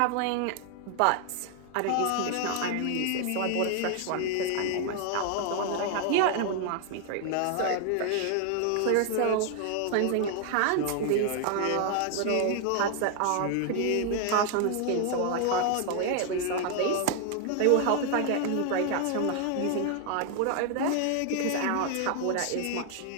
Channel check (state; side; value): different; both; correlation 0.00